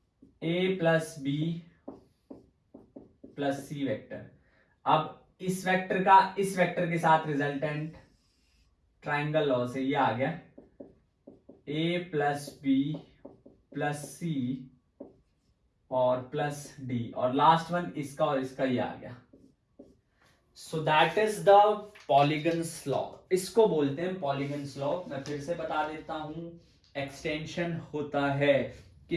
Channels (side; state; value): both; identical; correlation 1.00